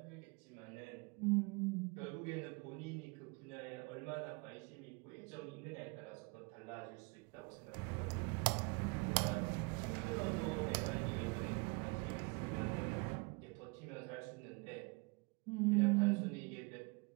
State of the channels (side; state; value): left; quieter; 29.1 dB